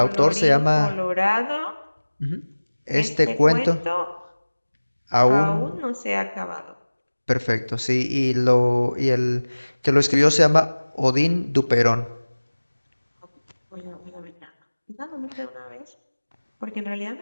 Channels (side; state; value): both; inverted; correlation -1.00